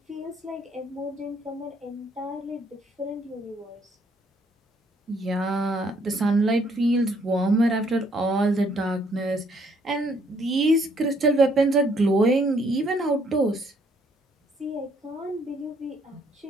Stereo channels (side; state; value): both; normal; correlation 0.67